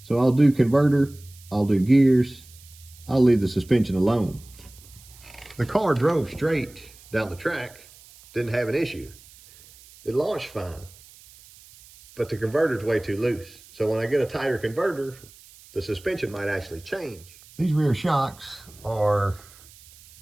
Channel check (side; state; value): right; noise; hiss, 23 dB below the sound